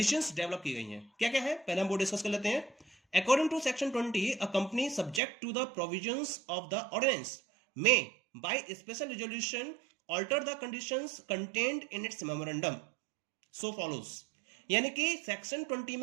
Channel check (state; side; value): drops out; left; at 5.2 s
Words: डेवलप की गई हैं। क्या क्या है, पहले हम वो डिस्कस कर लेते हैं। According to Section 20, a company subject to the provisions of the ordinance may, by special resolution, alter the conditions contained in its memorandum. So follows. यानी कि सेक्शन 20